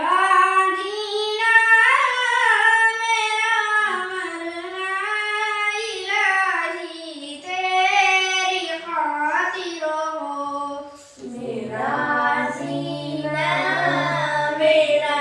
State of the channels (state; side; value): identical; both; correlation 1.00